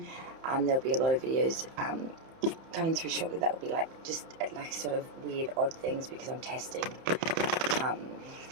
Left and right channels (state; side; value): late; left; 30 ms